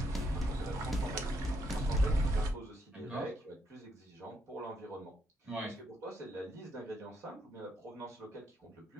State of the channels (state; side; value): normal; both; correlation 0.76